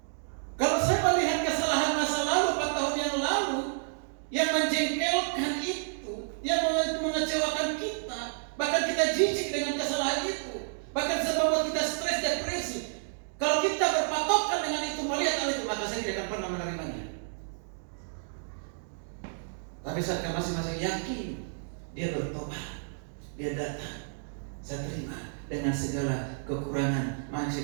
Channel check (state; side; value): silent; left; digital silence